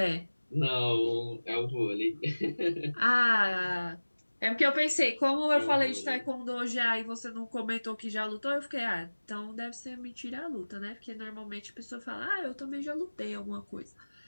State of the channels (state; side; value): inverted; both; correlation -1.00